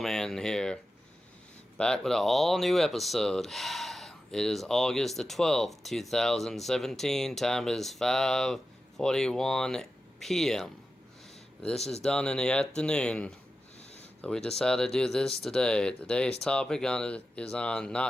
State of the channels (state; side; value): normal; both; correlation 0.92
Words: here, back with an all-new episode. It is August the 12th, 2017, time is 5:41 p.m. This is done in the afternoon, so we decided to do this today. Today's topic is on